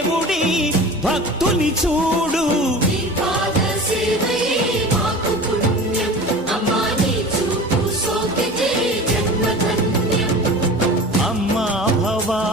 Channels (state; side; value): normal; both; correlation 0.36